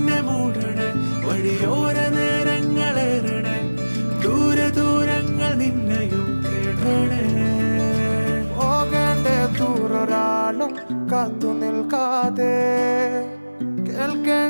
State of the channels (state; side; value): inverted; both; correlation -1.00